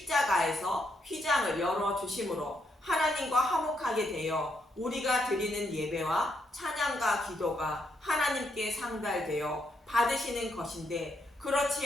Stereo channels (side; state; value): both; normal; correlation 0.77